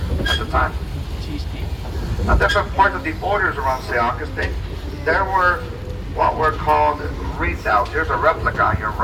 at the time. Now, different parts of the borders around St. Augustine, there were what were called redoubts. Here's a replica on your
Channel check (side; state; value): both; identical; correlation 1.00